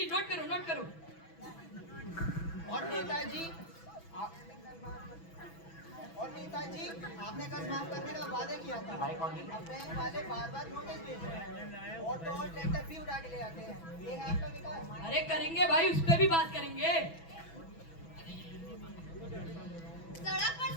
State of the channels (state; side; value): late; right; 6.1 ms